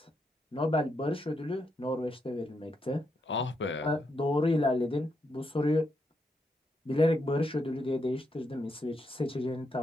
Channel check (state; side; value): normal; both; correlation 0.80